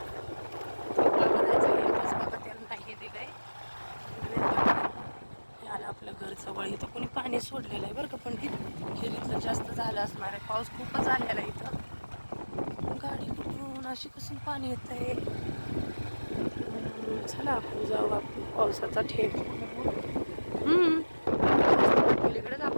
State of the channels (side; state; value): both; inverted; correlation -1.00